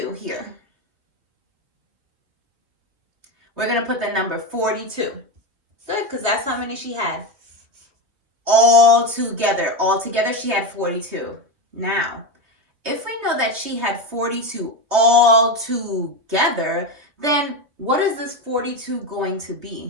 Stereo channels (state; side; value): late; left; 3.0 ms